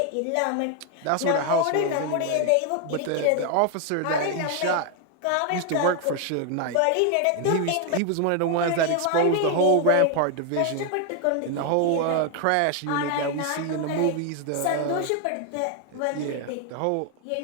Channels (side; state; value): both; different; correlation 0.01